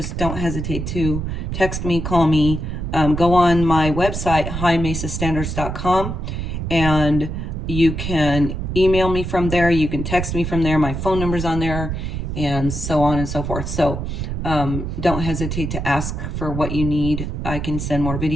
don't hesitate to text me, call me, go on my website, highmesastandards.com, and you can email me from there. You can text me from there. My phone number's on there, and so on and so forth. So don't hesitate to ask for what you need. I can send more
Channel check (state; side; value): noise; right; rumble, 4 dB below the sound